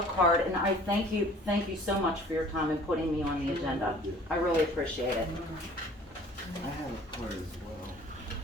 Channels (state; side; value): normal; both; correlation 0.50